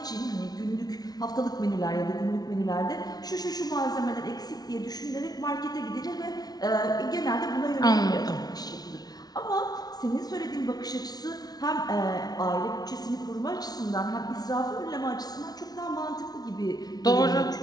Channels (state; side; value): late; right; 0.19 ms